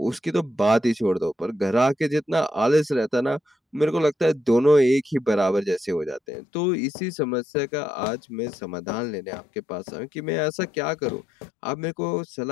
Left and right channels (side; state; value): right; drops out; at 6.2 s